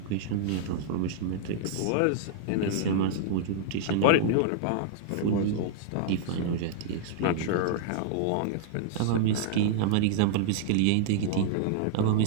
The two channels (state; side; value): different; both; correlation -0.01